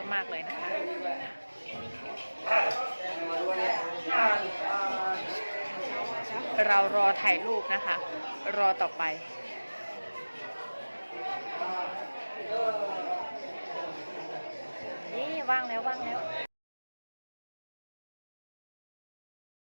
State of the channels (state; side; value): inverted; both; correlation -1.00